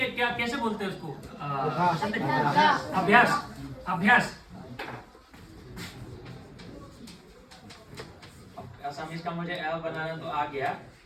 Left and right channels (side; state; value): both; identical; correlation 1.00